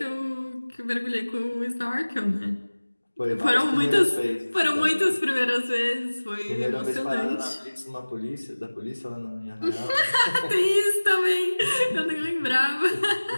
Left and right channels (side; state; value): both; inverted; correlation -1.00